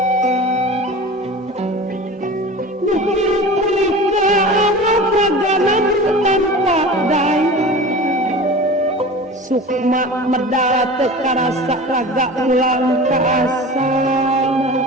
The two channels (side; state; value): both; normal; correlation 0.35